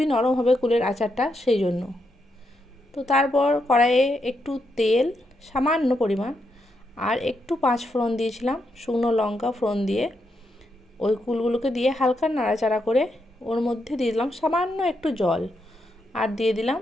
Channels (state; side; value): normal; both; correlation 0.81